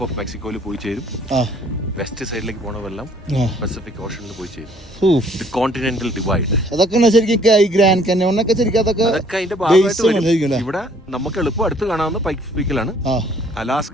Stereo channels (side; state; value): both; normal; correlation 0.60